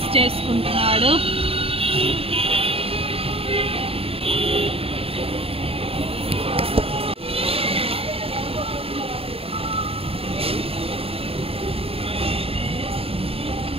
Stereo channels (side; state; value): left; late; 0.28 ms